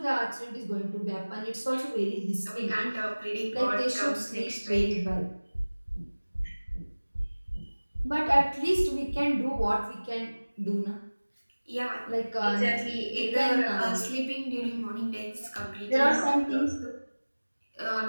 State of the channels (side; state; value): both; inverted; correlation -1.00